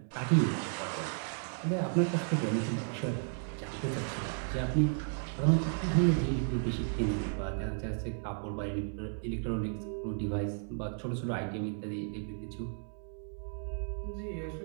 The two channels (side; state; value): left; silent; 55 dB below the other